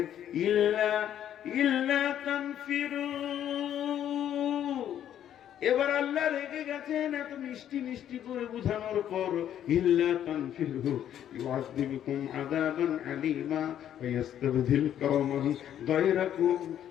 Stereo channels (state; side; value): quieter; right; 10.5 dB